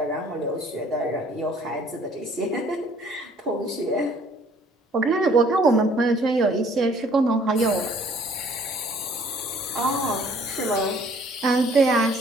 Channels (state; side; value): normal; both; correlation 0.58